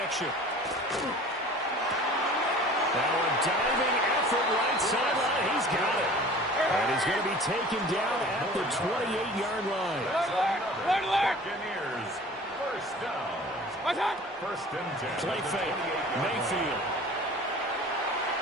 Now a diving effort right sideline. He's got it. And he's going to be taken down at the 28-yard line. Buccaneers, first down. First and 10. Play fake. Mayfield.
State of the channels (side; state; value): both; normal; correlation 0.44